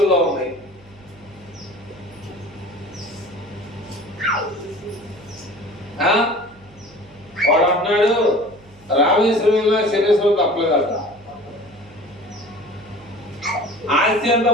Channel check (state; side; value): noise; right; hum, 26 dB below the sound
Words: ఉంది. వాడు అంటున్నాడు రామేశ్వరంలో శనేశ్వరం తప్పలేదట. ఆస్తి అంతా